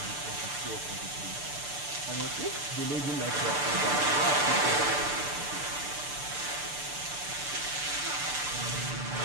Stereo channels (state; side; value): late; left; 6.8 ms